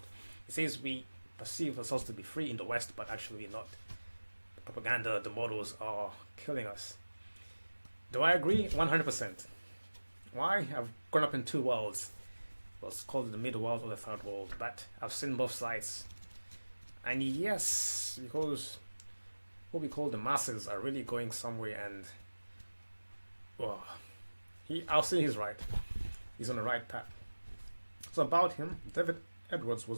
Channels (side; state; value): both; inverted; correlation -1.00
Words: It says we perceive ourselves to be free in the West, but actually we're not. The propaganda, the models are killing us. Do I agree? 100%. Why? I've grown up in 2 worlds. was called the middle world or the third world, but I've seen both sides. And yes, because what we call the masses are really going somewhere, and well, I'll say he's right. He's on the right path. So about him, David Edwards